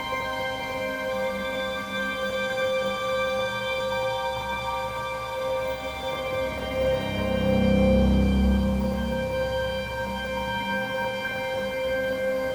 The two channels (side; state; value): both; identical; correlation 1.00